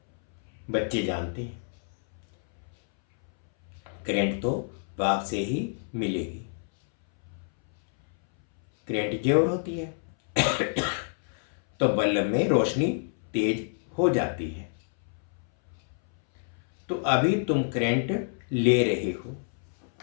बच्चे जानते हैं करंट तो बाप से ही मिलेगी। करंट जोर होती है तो बल्ब में रोशनी तेज हो जाती है। तो अभी तुम करंट ले रहे हो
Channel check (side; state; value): right; silent; 59 dB below the other